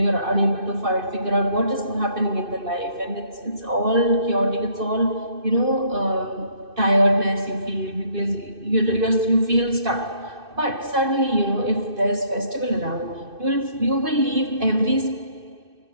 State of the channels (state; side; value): late; left; 2.6 ms